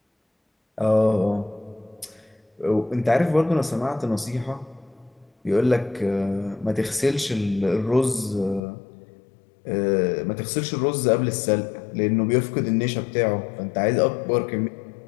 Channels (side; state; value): right; drops out; at 8.6 s